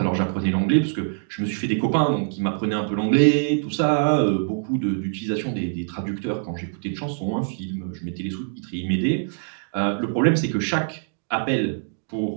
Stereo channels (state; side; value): silent; left; digital silence